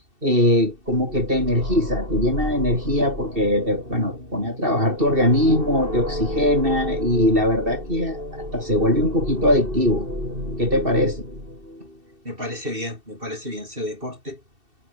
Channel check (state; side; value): late; left; 2.7 ms